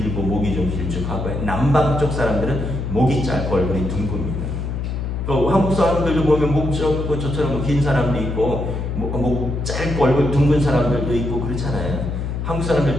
목이 좀 길쭉하고, 남방 쪽 사람들은 목이 짧고 얼굴이 둥굽니다. 또 한국 사람들도 보면 목 짧고 저처럼 긴 사람도 있고 목 짧고 얼굴 둥근 사람들도 있고 그렇잖아요. 한국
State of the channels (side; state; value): left; noise; hum, 3 dB below the sound